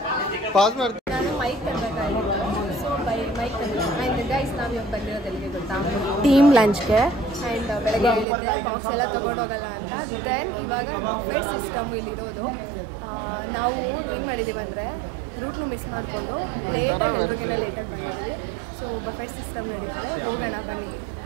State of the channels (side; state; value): left; drops out; at 8.2 s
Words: ನಾನು ಮೈಕ್ ತರಬೇಕಾಗಿತ್ತು. ಸೊ ಮೈಕ್ ಆ್ಯಂಡ್ ಗೈಸ್ ನಾವು ಇವಾಗ ಬಂದಿರೋದೆಲ್ಲಿಗೆ ಗೊತ್ತಾ? ಟೀಮ್ ಲಂಚ್ಗೆ. ಆ್ಯಂಡ್ ಬೆಳಗ್ಗೆ ಹೇಳಿದ್ದೆ ಬಾಕ್ಸ್ ಎಲ್ಲ ತೊಗೊಂಡೋಗಲ್ಲ ಅಂತ. ದೆನ್ ಇವಾಗ ಬಫೆಟ್ ಸಿಸ್ಟಮ್ ಇಲ್ಲಿರೋದು. ನಾವು ಏನು ಮಾಡಿದ್ದೀವಿ ಅಂದರೆ ರೂಟ್ನು ಮಿಸ್ ಮಾಡಿಕೊಂಡು ಲೇಟಾಗಿ ಬಂದಿದ್ದೀವಿ. ಸೊ ಬಫೆಟ್ ಸಿಸ್ಟಮ್ ನಡೀತದೆ, ಹೋಗೋಣ ಬನ್ನಿ.